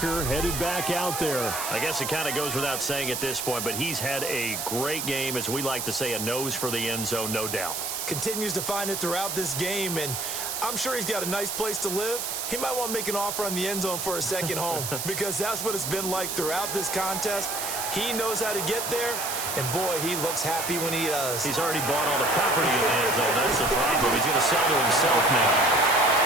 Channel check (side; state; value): right; noise; hiss, 3 dB below the sound